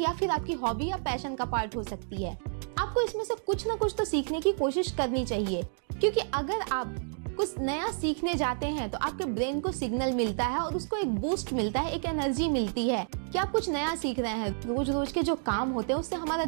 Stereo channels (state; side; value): silent; left; digital silence